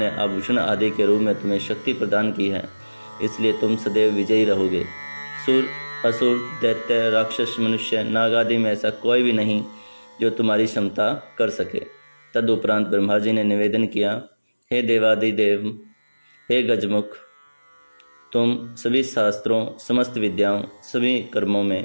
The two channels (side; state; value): both; inverted; correlation -1.00